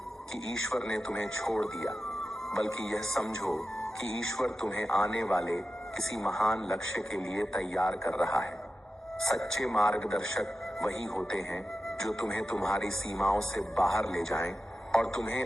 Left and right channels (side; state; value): both; normal; correlation 0.92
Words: कि ईश्वर ने तुम्हें छोड़ दिया, बल्कि यह समझो कि ईश्वर तुम्हें आने वाले किसी महान लक्ष्य के लिए तैयार कर रहा है। सच्चे मार्गदर्शक वही होते हैं जो तुम्हें तुम्हारी सीमाओं से बाहर ले जाएं और